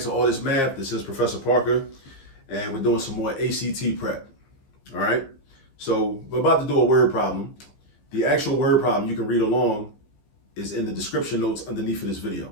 All This Math. This is Professor Parker, and we're doing some more ACT prep. All right. So we're about to do a word problem. The actual word problem you can read along is in the description notes underneath of this video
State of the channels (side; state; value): right; late; 15 ms